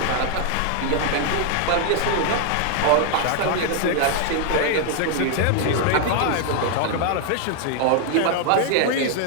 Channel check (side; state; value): both; different; correlation 0.00